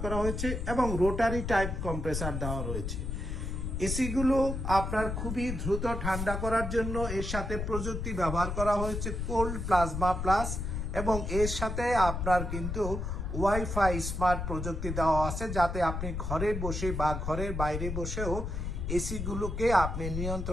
করা হয়েছে এবং রোটারি টাইপ কম্প্রেসার দেওয়া রয়েছে। এসিগুলো আপনার খুবই দ্রুত ঠান্ডা করার জন্য এর সাথে প্রযুক্তি ব্যবহার করা হয়েছে কোল্ড প্লাজমা প্লাস, এবং এর সাথে আপনার কিন্তু ওয়াইফাই স্মার্ট প্রযুক্তি দেওয়া আছে, যাতে আপনি ঘরে বসে বা ঘরের বাইরে বসেও এসিগুলোকে আপনি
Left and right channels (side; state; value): left; noise; rumble, 3 dB below the sound